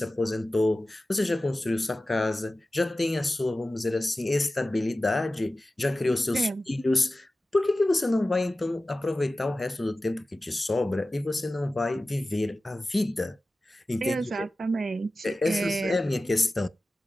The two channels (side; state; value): both; normal; correlation 0.95